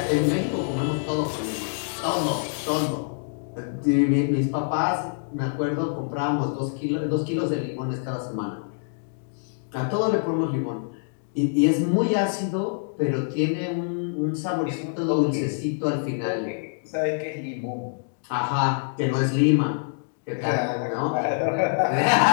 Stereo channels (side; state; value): right; silent; digital silence